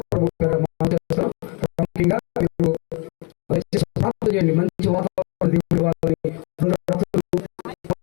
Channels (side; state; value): right; quieter; 32.3 dB